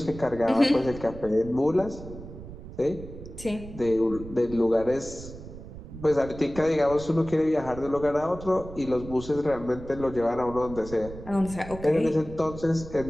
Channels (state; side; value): noise; right; rumble, 13 dB below the sound